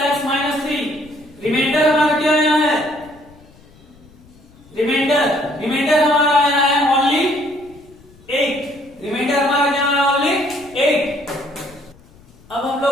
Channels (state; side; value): noise; left; rumble, 26 dB below the sound